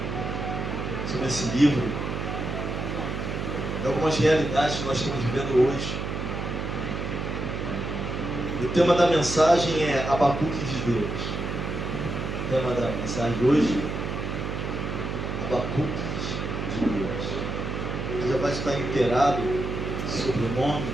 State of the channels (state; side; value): noise; right; hum, 4 dB below the sound